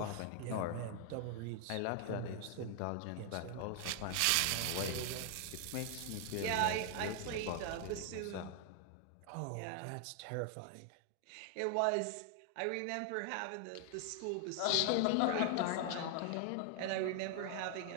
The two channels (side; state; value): both; different; correlation 0.00